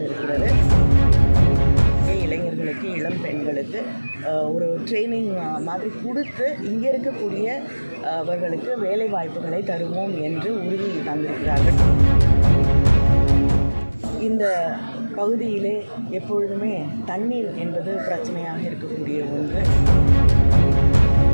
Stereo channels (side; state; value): both; inverted; correlation -1.00